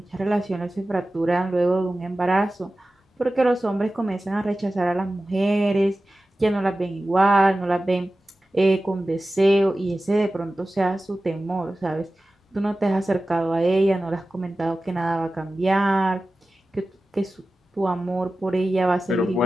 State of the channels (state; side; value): normal; both; correlation 0.95